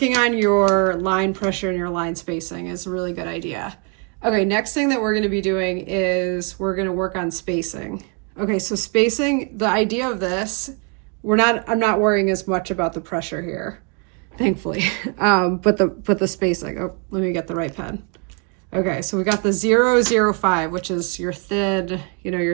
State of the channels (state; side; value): quieter; left; 37.3 dB